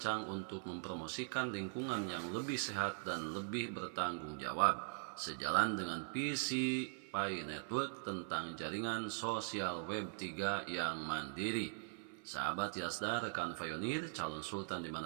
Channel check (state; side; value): silent; left; 50 dB below the other